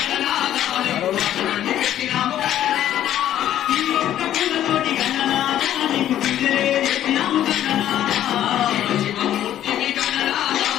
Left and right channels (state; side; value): quieter; right; 11.7 dB